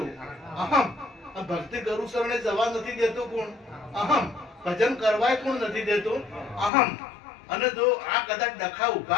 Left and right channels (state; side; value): drops out; right; at 6.7 s